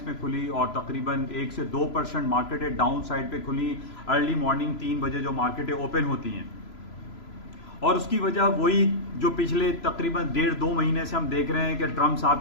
में खुली और तकरीबन 1 से 2% मार्केटें डाउन साइड पे खुली अर्ली मॉर्निंग 3 बजे जो मार्केटें ओपन होती हैं। और उसकी वजह वही जो पिछले तकरीबन 1.5-2 महीने से हम देख रहे हैं कि ट्रंप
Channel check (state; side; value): late; right; 3.0 ms